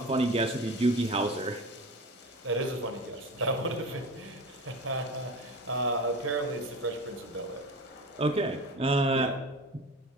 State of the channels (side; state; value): both; normal; correlation 0.32